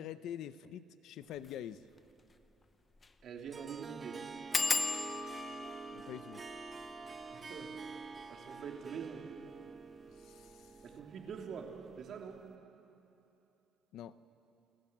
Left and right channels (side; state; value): both; normal; correlation 0.82